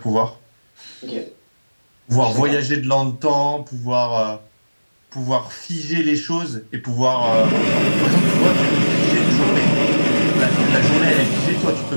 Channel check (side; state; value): both; inverted; correlation -1.00